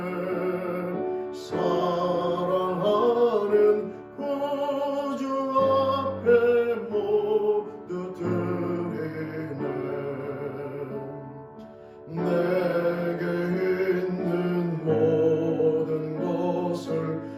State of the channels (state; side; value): identical; both; correlation 1.00